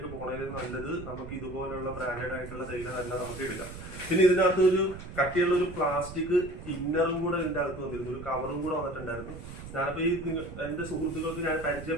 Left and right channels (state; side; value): noise; right; rumble, 12 dB below the sound